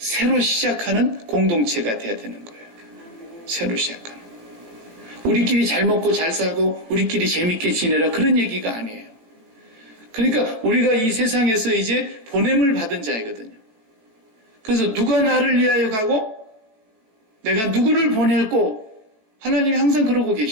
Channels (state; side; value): late; left; 18 ms